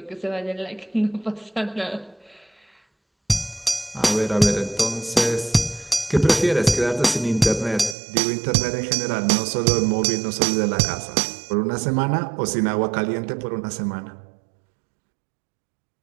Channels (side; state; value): left; drops out; at 8.0 s